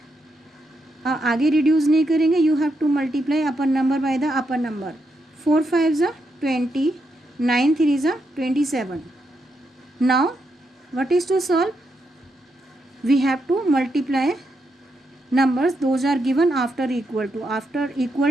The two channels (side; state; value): both; normal; correlation 0.82